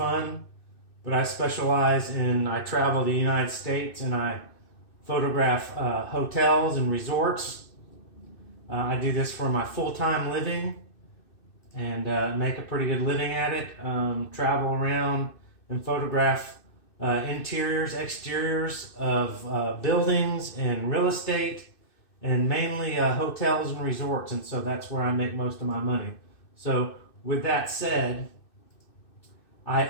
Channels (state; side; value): late; right; 2.6 ms